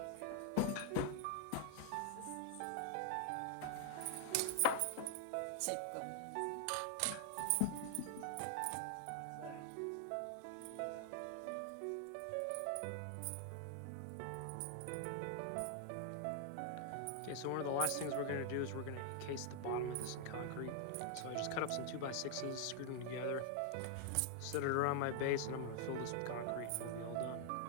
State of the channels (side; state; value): both; different; correlation 0.00